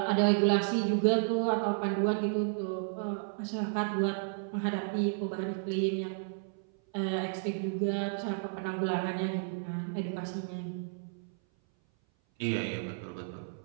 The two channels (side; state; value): left; silent; 56 dB below the other